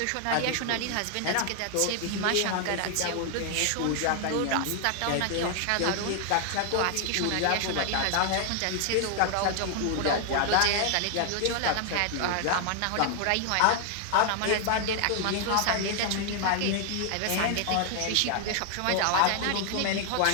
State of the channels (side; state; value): both; different; correlation 0.00